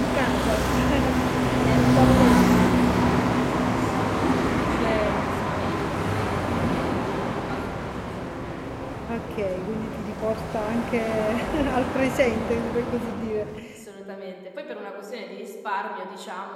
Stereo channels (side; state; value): both; identical; correlation 1.00